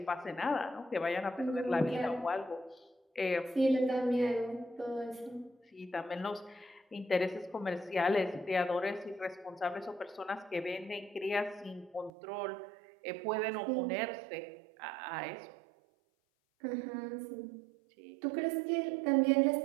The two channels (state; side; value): drops out; left; at 12.1 s